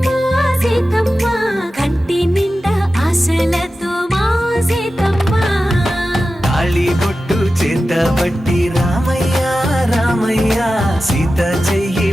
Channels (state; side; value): normal; both; correlation 0.93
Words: సీతమ్మ కంటి నిండా ఆశలతో మా సీతమ్మ తాళి బొట్టు చేత బట్టి రామయ్య రామయ్య సీత చెయ్యి